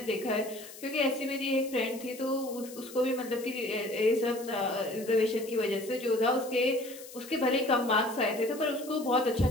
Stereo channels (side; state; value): left; noise; hiss, 16 dB below the sound